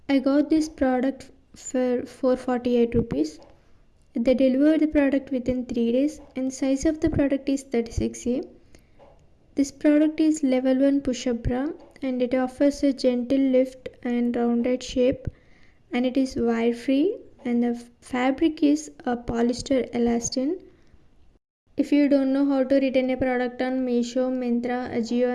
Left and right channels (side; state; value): both; identical; correlation 1.00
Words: I got this product for 448 rupees. They deliver the product within 3 days and size of the product is 36A. This product is level 1 push-up bra and it offers a gentle lift and rounded shape, and it is wire free, and the fabric is a polyester elastin. If you don't know how to return a product on Meesho, Myntra, Ajio